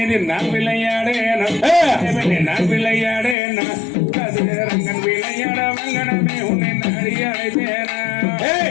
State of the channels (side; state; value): right; drops out; at 3.4 s